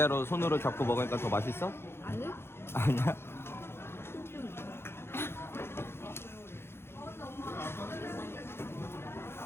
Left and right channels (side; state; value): right; late; 0.12 ms